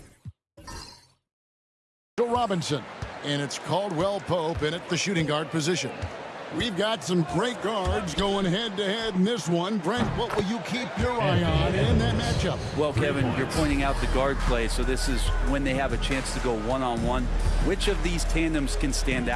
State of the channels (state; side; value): identical; both; correlation 1.00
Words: Robinson. And it's Caldwell Pope in at the shooting guard position. We've got some great guards going head-to-head in this one. Brent, what will you keep your eye on in that matchup? Well, Kevin, you're pointing out the guard play, so this is when they have a chance to go one-on-one. Which of these tandems can stand